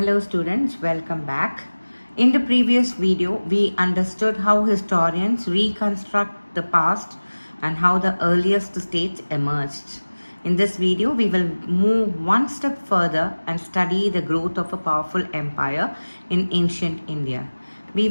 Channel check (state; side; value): inverted; both; correlation -1.00